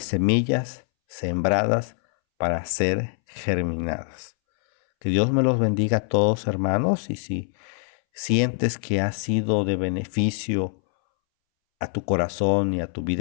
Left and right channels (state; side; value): silent; right; 63 dB below the other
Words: semillas sembradas para ser germinadas. Que Dios me los bendiga a todos, hermanos, y si sientes que ha sido de beneficio a tu corazón y a tu